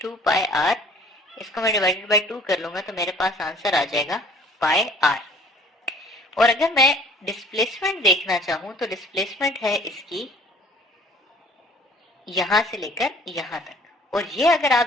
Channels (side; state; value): both; normal; correlation 0.54